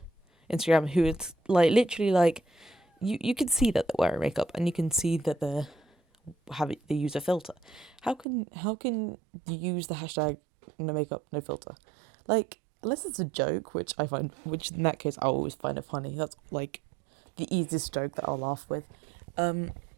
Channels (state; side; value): drops out; left; at 8.2 s